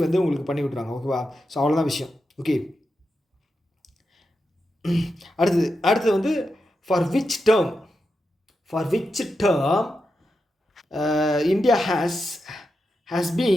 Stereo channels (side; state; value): both; normal; correlation 0.88